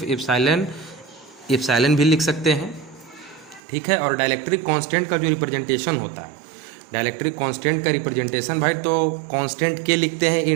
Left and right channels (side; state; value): left; drops out; at 3.6 s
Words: एप्सिलॉन भी लिख सकते हैं, ठीक है। और डाइलेक्ट्रिक कांस्टेंट का जो रिप्रेजेंटेशन होता है, डाइलेक्ट्रिक कांस्टेंट का रिप्रेजेंटेशन भाई तो कांस्टेंट के लिखते हैं